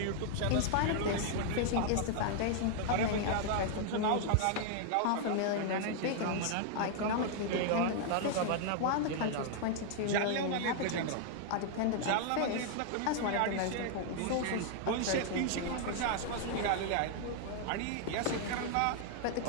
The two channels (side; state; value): both; different; correlation 0.00